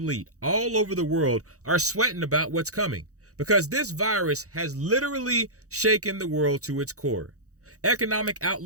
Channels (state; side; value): late; left; 0.65 ms